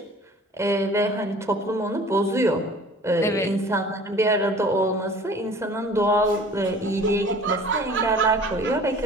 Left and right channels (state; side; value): normal; both; correlation 0.47